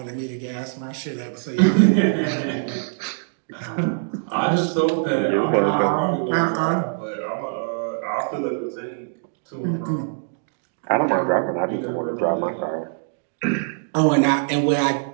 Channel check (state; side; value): silent; left; digital silence